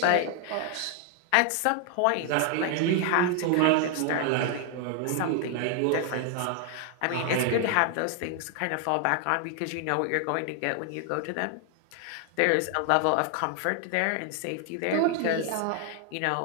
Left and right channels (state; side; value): different; both; correlation 0.00